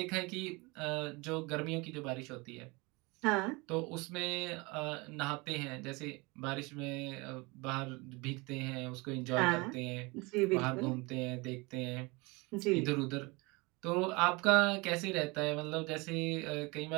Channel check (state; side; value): quieter; left; 25.8 dB